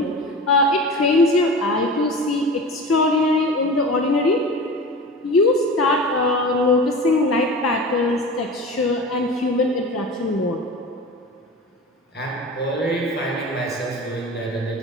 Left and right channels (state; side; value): normal; both; correlation 0.33